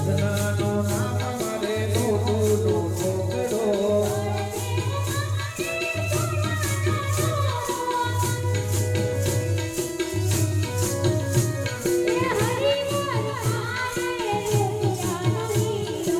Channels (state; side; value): identical; both; correlation 1.00